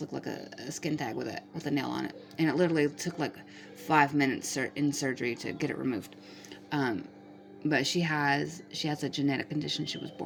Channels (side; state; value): both; identical; correlation 1.00